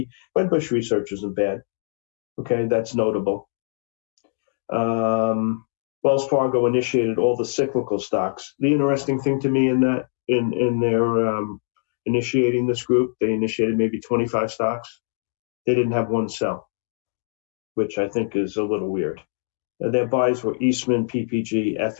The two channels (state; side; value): silent; right; digital silence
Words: Wedbush research isn't bad. Okay, that's notable. Wells Fargo initiated all the cyclical stocks. The interesting thing to me in their initiating this group, they initiated maybe 25 stocks. They didn't have one sell, which I think is a little weird. Their buys were Eastman, PPG,